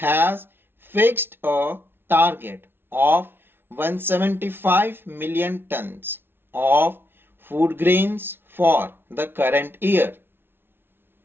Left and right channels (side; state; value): left; late; 0.11 ms